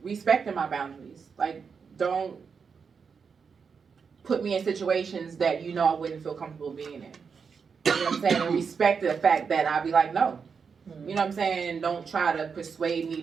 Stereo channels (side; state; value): left; quieter; 5.9 dB